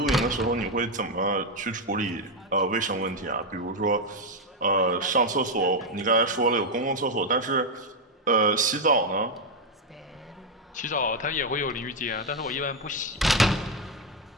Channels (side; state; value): both; normal; correlation 0.04